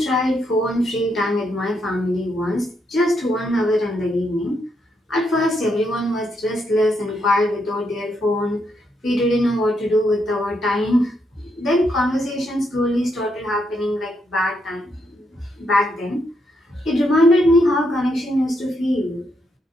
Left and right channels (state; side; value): normal; both; correlation 0.78